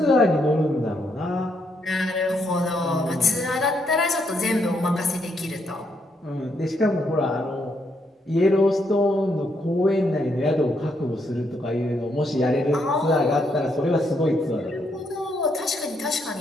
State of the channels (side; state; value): both; normal; correlation 0.76